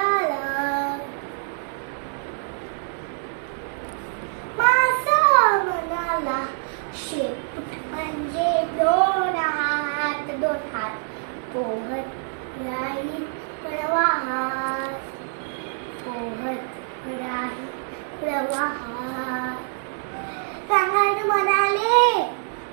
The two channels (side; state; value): left; silent; digital silence